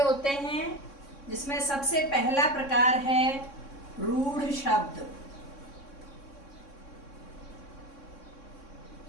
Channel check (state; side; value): late; right; 3.6 ms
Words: हैं, जिसमें सबसे पहला प्रकार है रूढ़ शब्द।